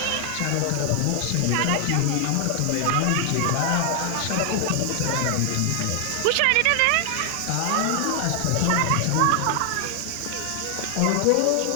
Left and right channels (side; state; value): both; different; correlation 0.00